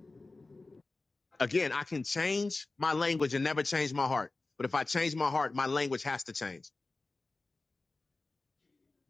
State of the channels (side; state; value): right; quieter; 3.4 dB